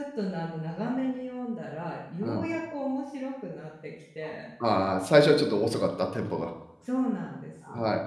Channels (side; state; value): both; identical; correlation 1.00